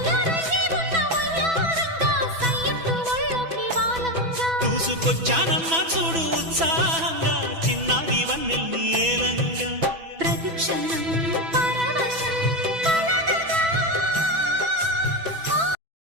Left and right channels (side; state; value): left; late; 6.1 ms